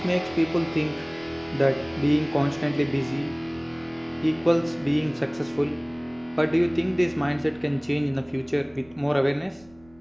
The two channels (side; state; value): right; noise; rumble, 29 dB below the sound